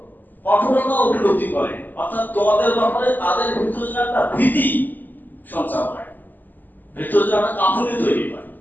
কঠোরতা উপলব্ধি করে, অর্থাৎ তোমাদের ব্যাপারে তাদের ভিতরে যেন একটা ভীতি সঞ্চার হয়, ভিতরে যেন একটা কাঁপুনি তৈরি হয়।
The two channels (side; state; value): right; late; 0.087 ms